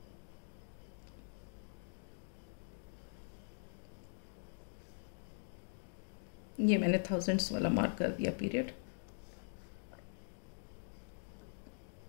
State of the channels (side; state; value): right; silent; digital silence